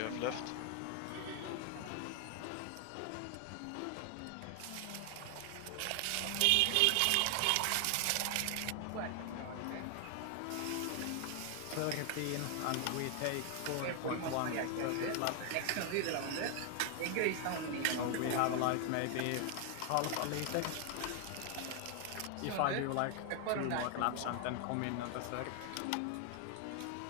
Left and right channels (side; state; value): both; different; correlation 0.00